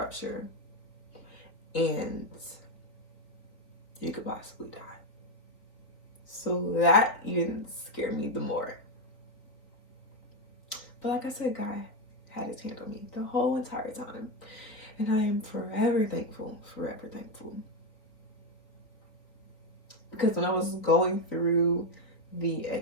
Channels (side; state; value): right; late; 3.8 ms